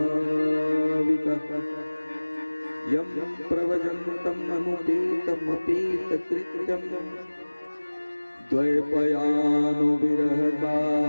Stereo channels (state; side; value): inverted; both; correlation -1.00